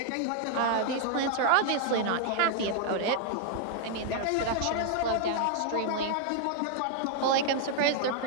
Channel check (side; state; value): both; different; correlation 0.00